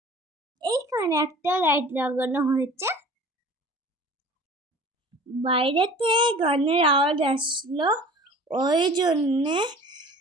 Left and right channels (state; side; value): normal; both; correlation 0.44